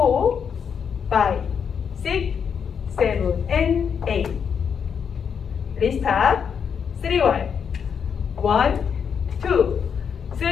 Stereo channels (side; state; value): right; quieter; 7.0 dB